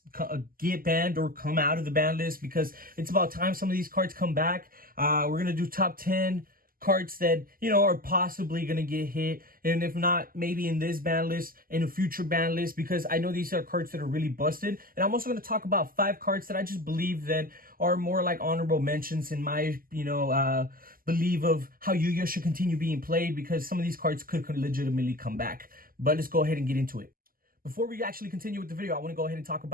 get banned or come out of the BanList, because it's about time some of these cards come back. We're going to do top 10 cards that, are possibly going to get hit, and if not, maybe in this ban list, in a future ban list, because I know these are cards that are really busted. And I'm also going to talk about 5 cards that I just believe that are more like honorable mentions in my, belief of how YuGiOh should continue being played, because some of these cards could legitimately come back. But let's go ahead and get into it. Before we actually continue with the video, I want to go ahead and talk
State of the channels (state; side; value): late; left; 0.42 ms